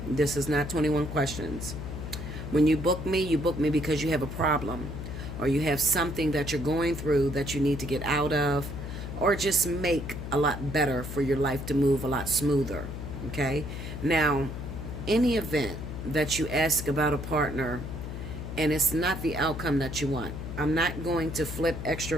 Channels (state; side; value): noise; left; hum, 7 dB below the sound